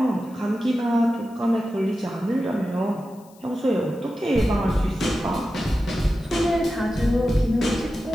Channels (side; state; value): left; noise; hiss, 28 dB below the sound